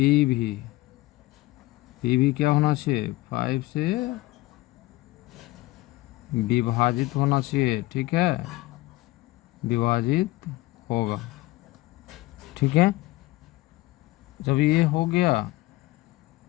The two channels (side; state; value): right; quieter; 19.5 dB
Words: भी क्या होना चाहिए 5 से विभाजित होना चाहिए। ठीक है, विभाजित होगा। ठीक है, जब ये हो गया